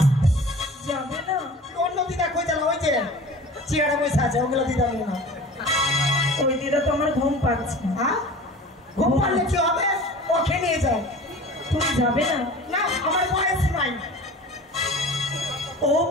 যাবে না? অন্য দিদা কই জানো, ওই যে চেয়ারে বসে আছে, ওগুলো দিদা নিয়ে না। ওই দিদা তো আমার ঘুম পাচ্ছে। হ্যাঁ, ঘুম পারলে কি হবে? ওকে নিয়ে যাও। তুমি যাবে না? না, আমার বয়স নাই। ও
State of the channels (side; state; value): both; normal; correlation 0.40